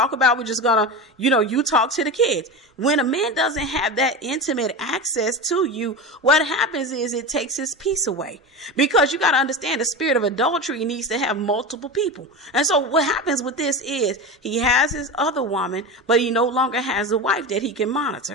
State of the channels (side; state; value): both; normal; correlation 0.24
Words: about. We're just gonna, you talk to the kids. When a man doesn't have that intimate access to you, what happens is it takes his peace away. Because you got to understand, the spirit of adultery needs to have multiple people. And so what happens with this is he has his other woman, but he no longer has a wife that he can